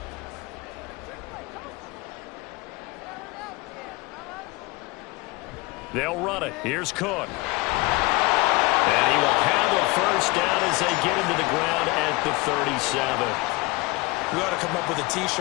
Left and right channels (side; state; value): right; quieter; 23.8 dB